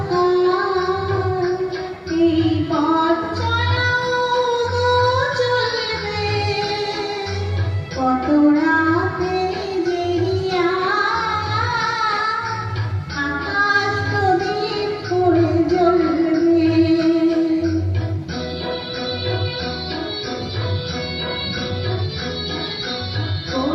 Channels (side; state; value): both; identical; correlation 1.00